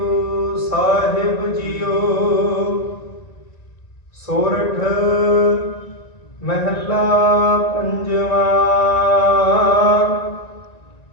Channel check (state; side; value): late; right; 1.9 ms